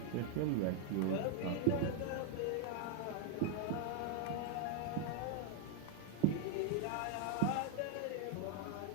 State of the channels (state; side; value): different; both; correlation 0.00